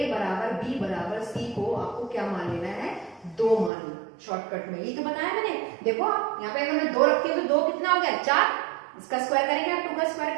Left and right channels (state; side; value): drops out; left; at 3.7 s